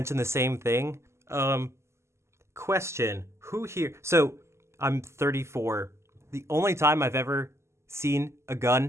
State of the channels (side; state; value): left; late; 0.13 ms